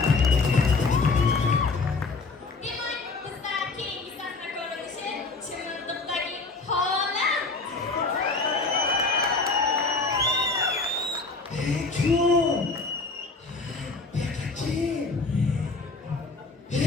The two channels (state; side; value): quieter; right; 3.8 dB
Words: Demak, bizda keyingi sahna ko'rinishi Chimildiqdagi holat.